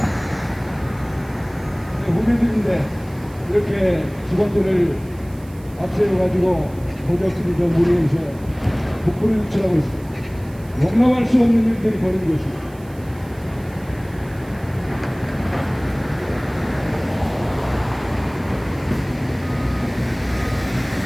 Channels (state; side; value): noise; right; hiss, 25 dB below the sound